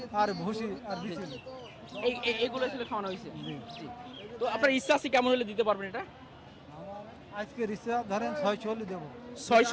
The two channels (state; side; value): identical; both; correlation 1.00